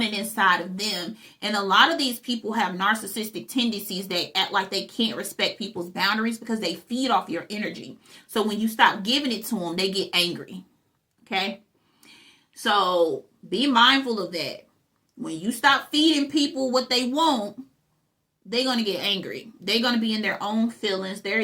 inside of them. And a lot of these people have narcissistic tendencies that act like they can't respect people's boundaries because they feed off your energy. So when you stop giving it to them, they get angry. Okay? So be mindful of that. When you stop feeding people what they want, they're going to get angry. They're going to be in their own feelings.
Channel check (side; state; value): both; identical; correlation 1.00